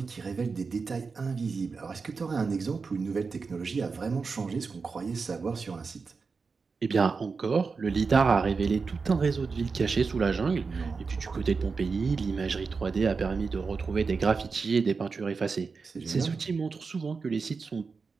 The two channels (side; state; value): left; quieter; 4.8 dB